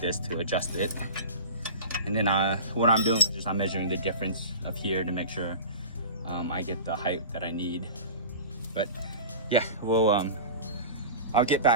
to adjust it. And then what I'm doing is just I'm measuring the difference of here to make sure I get the height that I need. But yeah, I'll get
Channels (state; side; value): inverted; both; correlation -0.34